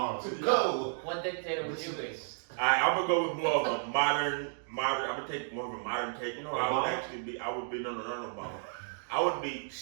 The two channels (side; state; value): left; silent; digital silence